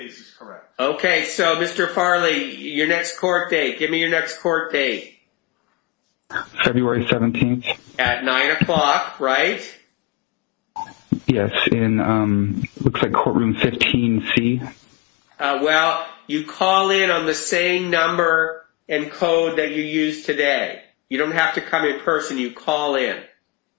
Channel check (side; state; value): right; quieter; 22.1 dB